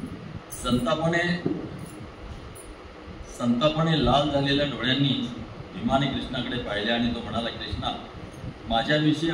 संतापाने लाल झालेल्या डोळ्यांनी भीमाने कृष्णाकडे पाहिले आणि तो म्हणाला, कृष्णा, माझ्याविषयी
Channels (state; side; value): identical; both; correlation 1.00